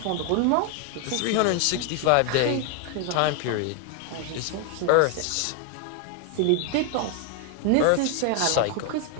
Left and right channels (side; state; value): both; different; correlation 0.01